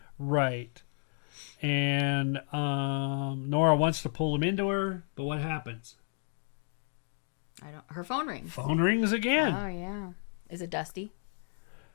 Right. And Nora wants to pull him into her, but what happens? Her phone rings. Phone rings again. Oh, yeah. Is it Dusty?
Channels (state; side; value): silent; right; 56 dB below the other